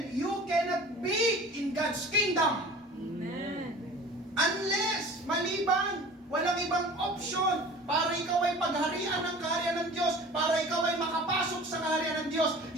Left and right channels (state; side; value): normal; both; correlation 0.42